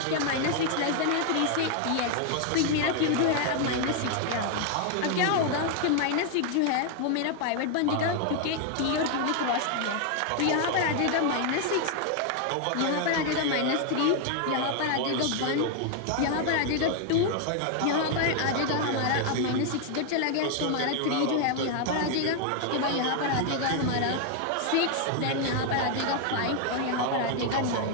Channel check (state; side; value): different; both; correlation 0.00